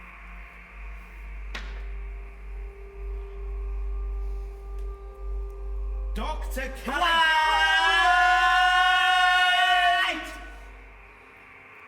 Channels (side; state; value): both; identical; correlation 1.00